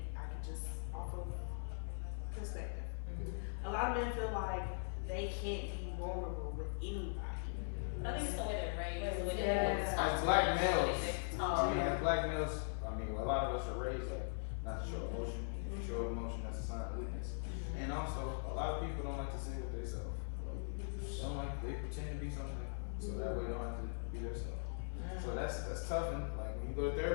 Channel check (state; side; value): silent; right; 51 dB below the other